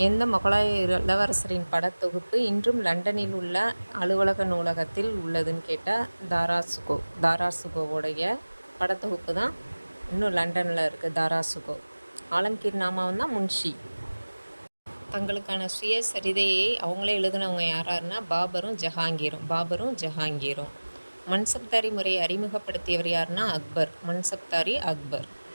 எந்த முகலாய இளவரசரின் படத்தொகுப்பு இன்றும் லண்டனில் உள்ள அலுவலக நூலகத்தில் உள்ளதுன்னு கேட்டால் தாராசுகோ. தாராசுகோவுடைய படத்தொகுப்பு தான் இன்னும் லண்டனில் இருக்குது. தாராசுகோ. ஆலம்கீர் நாமாவும் தான் முன்ஷி. தங்களுக்கான சுயசரிதையை அவங்களே எழுதினவங்க யாராருன்னா பாபரும் ஜஹாங்கீரும். மன்சப்தாரி முறையை அறிமுகப்படுத்தியவர் யாருன்னா அக்பர். மன்சப்தாரி அக்பர்.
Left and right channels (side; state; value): both; inverted; correlation -1.00